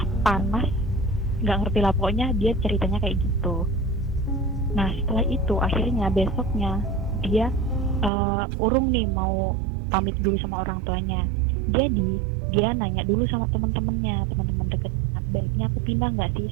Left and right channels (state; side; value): drops out; left; at 8.1 s